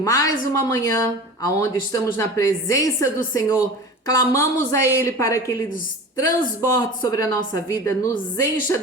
uma manhã, aonde estamos na presença do Senhor, clamamos a Ele para que Ele nos transborde sobre a nossa vida, nos encha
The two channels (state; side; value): normal; both; correlation 0.35